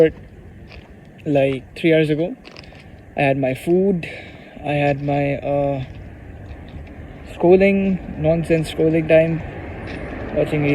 like 3 hours ago. I had my food. I had my nonsense scrolling time, watching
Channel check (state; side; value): identical; both; correlation 1.00